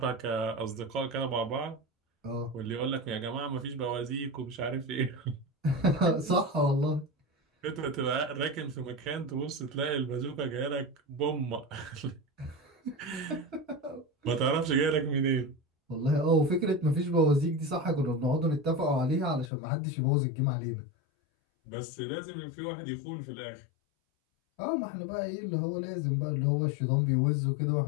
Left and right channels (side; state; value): right; drops out; at 19.5 s